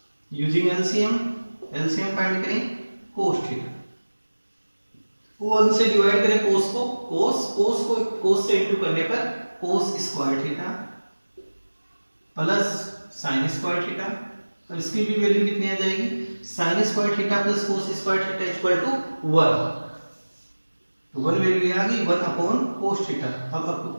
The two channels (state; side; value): inverted; both; correlation -1.00